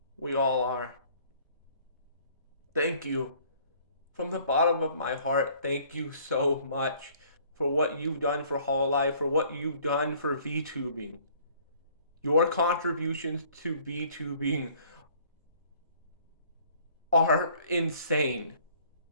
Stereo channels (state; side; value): inverted; both; correlation -0.58